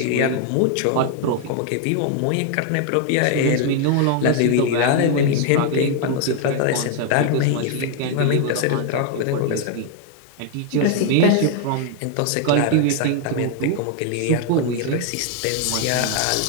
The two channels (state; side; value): different; both; correlation 0.00